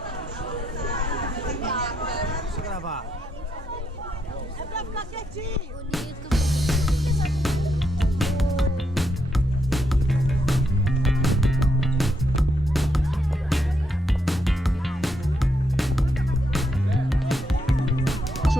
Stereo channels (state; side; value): normal; both; correlation 0.78